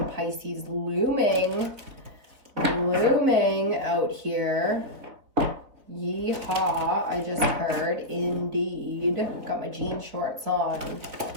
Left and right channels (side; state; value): left; late; 4.3 ms